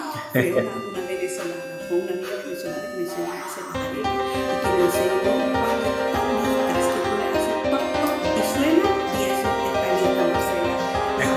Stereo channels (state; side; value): identical; both; correlation 1.00